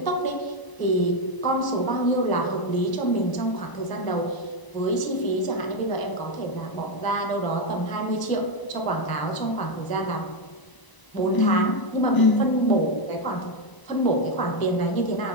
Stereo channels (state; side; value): late; right; 1.0 ms